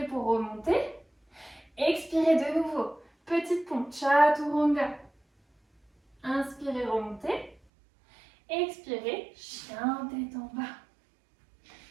pour remonter. Expirez de nouveau. Petite pompe, chaturanga. Inspirez, remontez. Expirez, chien tête en bas.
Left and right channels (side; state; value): left; drops out; at 7.6 s